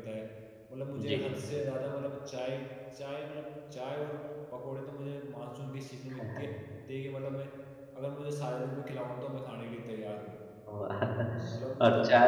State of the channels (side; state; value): both; identical; correlation 1.00